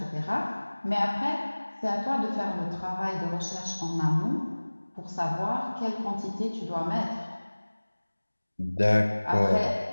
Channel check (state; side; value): inverted; both; correlation -1.00